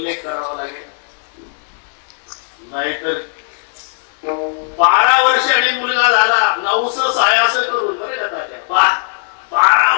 करावा लागेल. नाहीतर 12 वर्षांनी मुलगा झाला, 900 सायास करून बरे का तात्या, 12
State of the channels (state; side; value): silent; right; digital silence